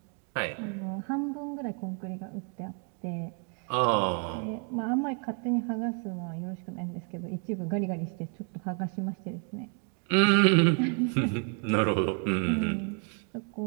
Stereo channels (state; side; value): quieter; left; 39.1 dB